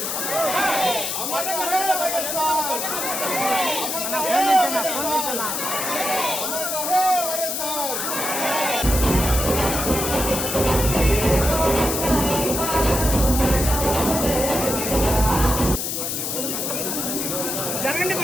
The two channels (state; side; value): noise; left; hiss, 2 dB below the sound